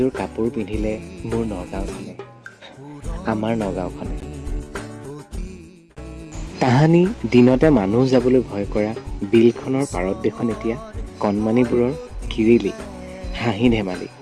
কাপোৰ পিন্ধিলে মোৰ নগাঁওখনে, আমাৰ নগাঁওখনে। তাহানি দিনতে মানুহ যাবলৈ ভয় কৰা বিলখনৰ পাৰত দেখোন এতিয়া কণমানিবোৰৰ কিৰিলি, হাঁহি ধেমালি।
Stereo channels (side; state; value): both; identical; correlation 1.00